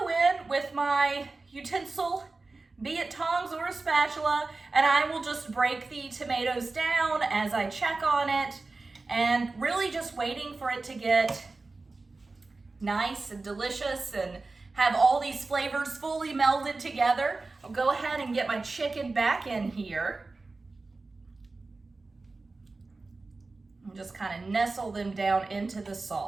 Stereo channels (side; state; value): left; quieter; 3.6 dB